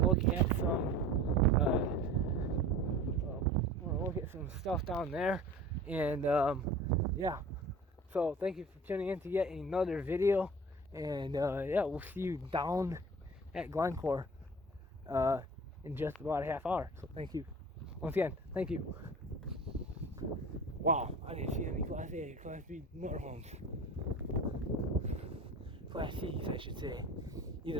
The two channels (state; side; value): normal; both; correlation 0.40